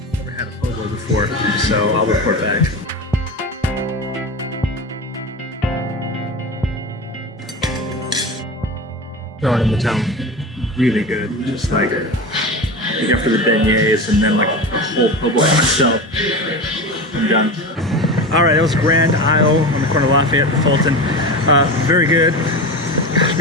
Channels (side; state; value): both; normal; correlation 0.26